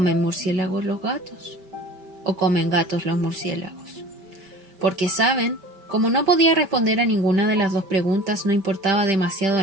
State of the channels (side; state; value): left; late; 5.1 ms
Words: murciélagos los gatos. O comen gatos los murciélagos. porque saben, como no podía responder a ninguna de las dos preguntas, no importaba demasiado